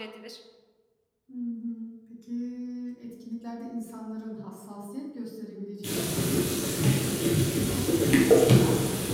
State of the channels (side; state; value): both; identical; correlation 1.00